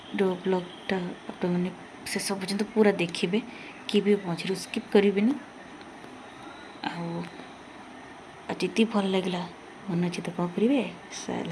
जो ब्लॉगटा आप मैंने शेष पर्यंत पूरा देखिए कि भी मझे स्किप करेंगे। आती भल लगे मन अच्छे तो कौन करेंगे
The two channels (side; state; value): both; identical; correlation 1.00